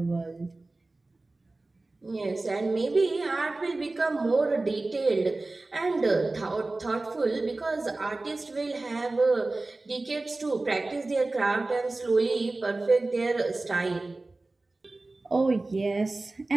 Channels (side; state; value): left; quieter; 3.1 dB